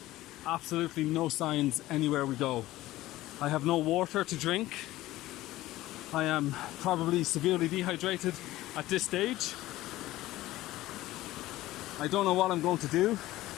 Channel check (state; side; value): quieter; right; 16.5 dB